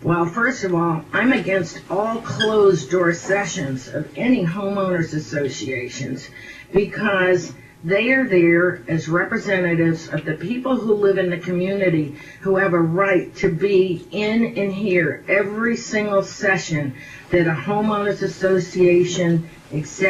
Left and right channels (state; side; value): identical; both; correlation 1.00